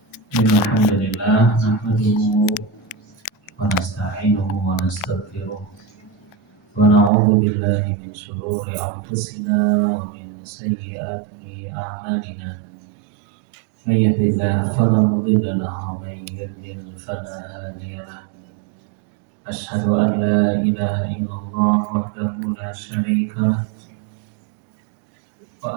Alhamdulillah nahmaduhu wa nasta'inuhu wa nastaghfiruh wa na'udzu billahi min shururi anfusina wa min sayyiati a'malina. May yahdihillahu fala mudilla lahu wa may yudlil fala hadiya lahu. Asyhadu an la ilaha illallah wahdahu la syarika lah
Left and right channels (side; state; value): left; drops out; at 7.1 s